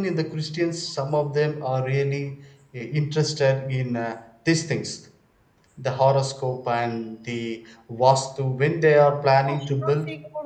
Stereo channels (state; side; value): identical; both; correlation 1.00